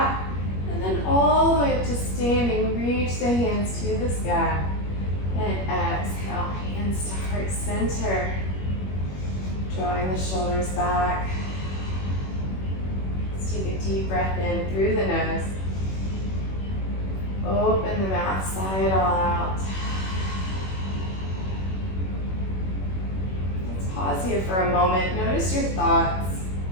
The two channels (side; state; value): right; late; 21 ms